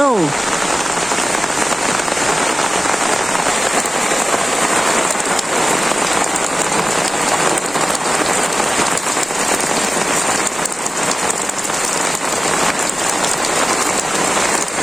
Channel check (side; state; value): both; normal; correlation 0.96